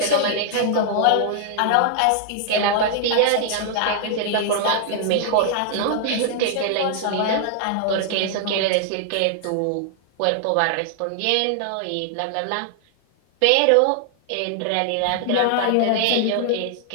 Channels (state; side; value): different; both; correlation 0.00